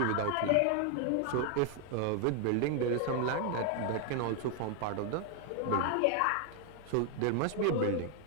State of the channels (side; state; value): both; different; correlation 0.00